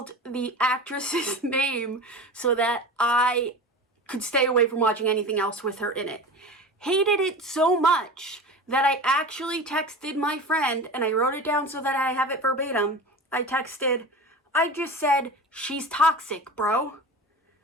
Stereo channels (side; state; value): both; normal; correlation 0.32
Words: the actress's name so that I could stay away from watching anything else with her in it. Hated it so much that I actually texted my friend, and I wrote it down so that I have it verbatim. I just said, "She's toxic, bro."